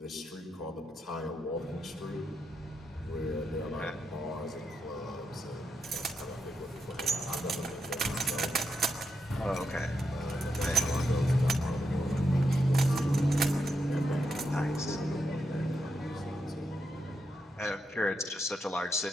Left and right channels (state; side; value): normal; both; correlation 0.84